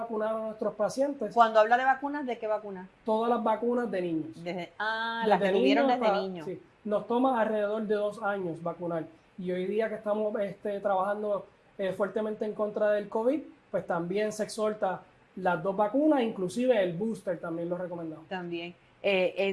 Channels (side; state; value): both; identical; correlation 1.00